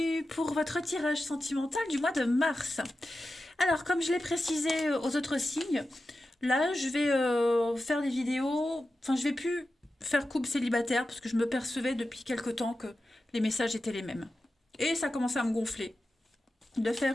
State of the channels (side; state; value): both; normal; correlation 0.92